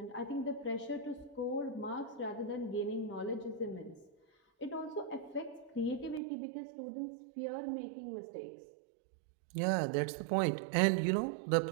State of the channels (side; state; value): left; drops out; at 6.2 s